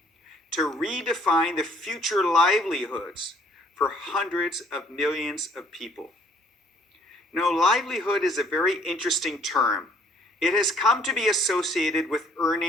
to redefine the future livelihoods for hundreds of millions of people. Now, livelihood is a very interesting term. It has come to be associated with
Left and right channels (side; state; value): both; normal; correlation 0.61